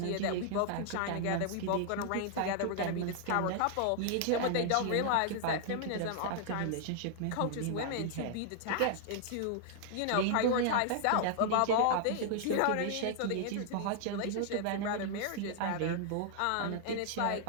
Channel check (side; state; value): both; different; correlation -0.01